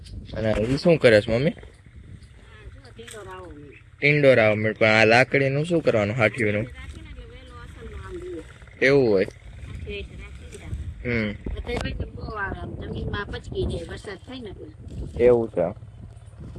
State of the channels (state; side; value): identical; both; correlation 1.00